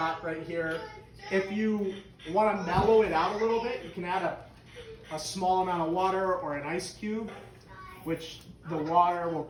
right here. If you want to mellow it out a little bit, you can add a small amount of water or an ice cube, which the water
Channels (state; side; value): identical; both; correlation 1.00